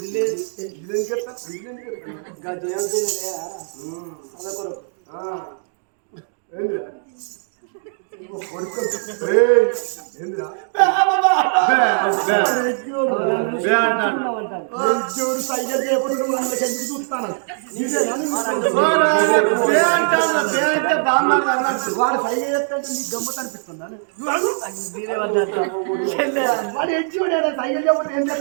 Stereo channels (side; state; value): left; silent; digital silence